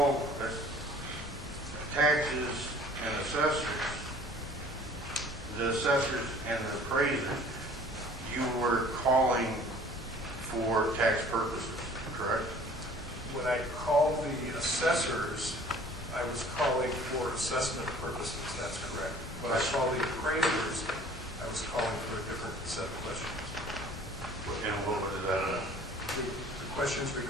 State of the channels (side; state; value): both; normal; correlation 0.50